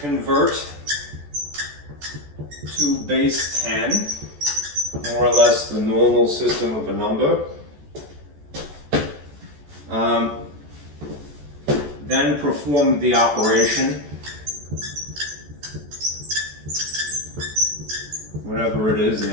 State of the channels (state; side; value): late; left; 14 ms